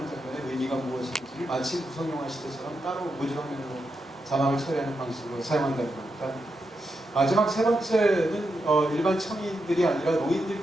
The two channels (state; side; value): normal; both; correlation 0.85